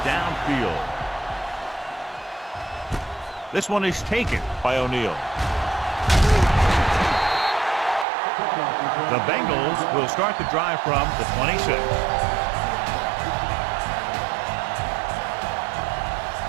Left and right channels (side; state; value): left; drops out; at 8.1 s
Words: downfield. This one is taken by O'Neal. The Bengals will start the drive from the 26.